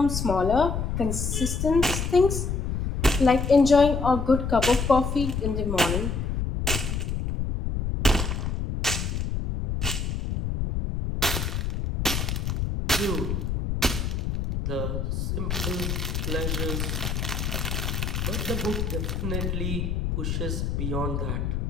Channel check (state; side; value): noise; left; rumble, 1 dB below the sound